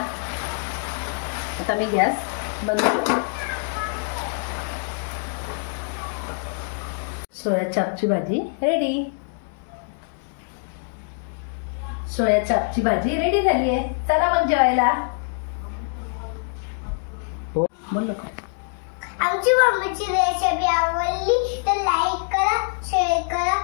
आता मी गॅस बंद करते. सोया चापची भाजी रेडी. सोया चापची भाजी रेडी झाली आहे. चला मग जेवायला. बोल का. आमची मम्मीची रेसिपी आवडली तर लाईक करा, शेअर करा,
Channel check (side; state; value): right; silent; 62 dB below the other